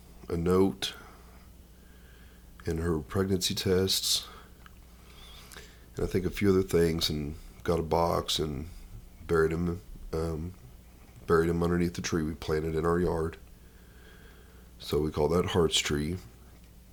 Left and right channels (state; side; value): identical; both; correlation 1.00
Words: a note and her pregnancy tests, and I think a few other things, and got a box and buried him underneath the tree we planted in our yard. So we call that Heart's Tree,